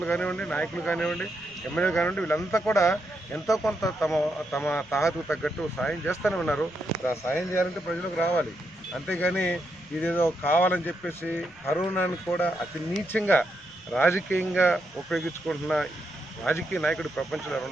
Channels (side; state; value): left; noise; rumble, 26 dB below the sound